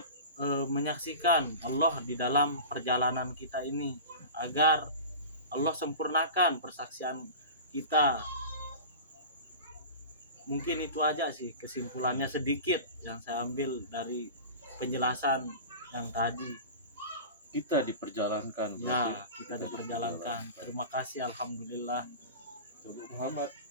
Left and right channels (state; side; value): inverted; both; correlation -0.33